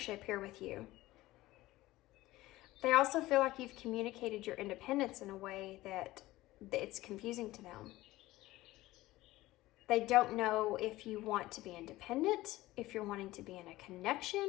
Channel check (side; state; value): right; quieter; 17.6 dB